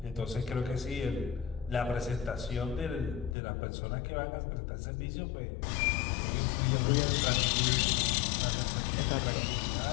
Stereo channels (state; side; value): drops out; right; at 3.4 s